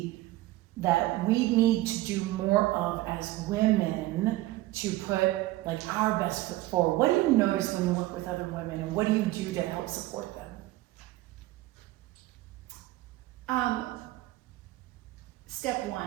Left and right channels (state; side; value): quieter; left; 17.3 dB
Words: that we need to do more of as women to put like our best foot forward? What do you notice when you work with other women, and what do you do to help support them? Step